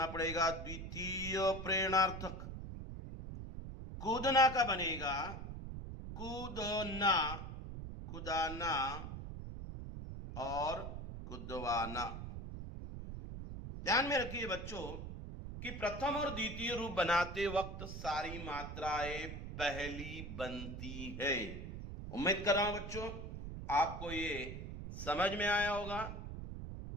पड़ेगा द्वितीय प्रेरणार्थक। कूदना का बनेगा कूदना, कुदाना और कुदवाना। ध्यान में रखिए बच्चों कि प्रथम और द्वितीय रूप बनाते वक्त सारी मात्राएं पहली बनती है। उम्मीद कर रहा हूं बच्चों आपको ये समझ में आया होगा।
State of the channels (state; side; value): noise; right; rumble, 8 dB below the sound